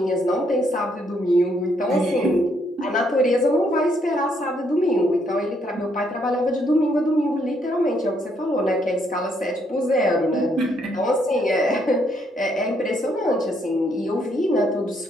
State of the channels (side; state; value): both; normal; correlation 0.72